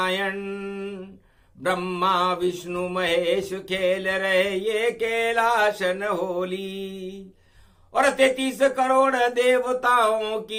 ब्रह्मा विष्णु महेश खेल रहे ये कैलाशन होली। और 33 करोड़ देवताओं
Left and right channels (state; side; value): identical; both; correlation 1.00